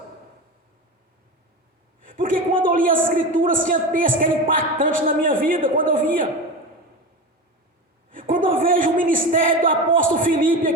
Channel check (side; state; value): both; normal; correlation 0.25